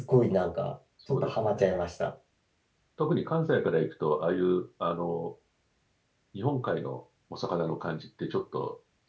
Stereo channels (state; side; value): identical; both; correlation 1.00